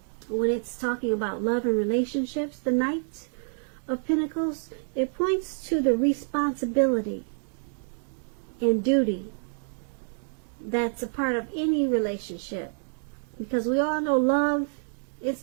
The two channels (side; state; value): left; silent; digital silence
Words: When it's talking about love and relationships, the Knight of Pentacles, it points to the responsibility and duty that's a part of any relationship. Because we all know love, it's